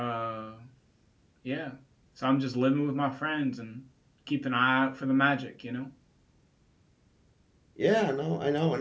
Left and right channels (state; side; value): identical; both; correlation 1.00